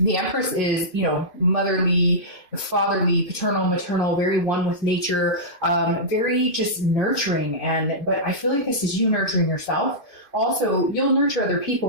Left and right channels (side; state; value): right; late; 2.5 ms